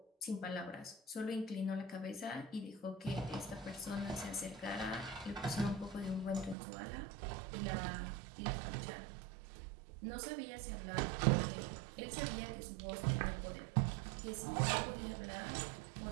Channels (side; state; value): left; drops out; at 6.6 s